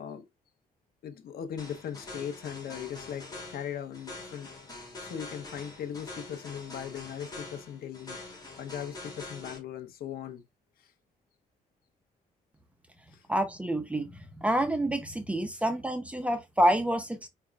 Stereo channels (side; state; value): both; normal; correlation 0.77